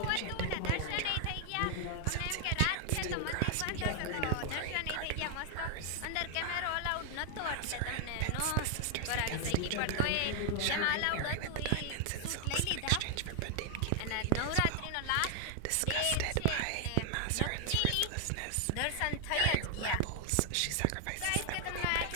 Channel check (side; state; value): both; different; correlation 0.00